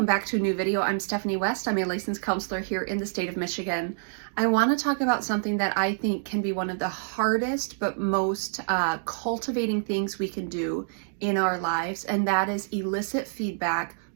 back to a new video. I'm Stephanie West. I'm a licensed counselor here in the state of Michigan. I want to talk about something that I think can be one of the hardest but most cultivating things we can do in our lives, and that is elicit feedback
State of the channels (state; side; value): silent; left; digital silence